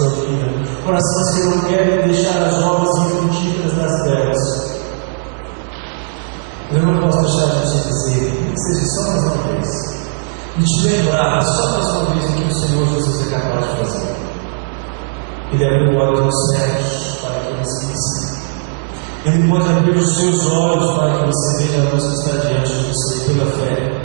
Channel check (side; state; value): left; silent; digital silence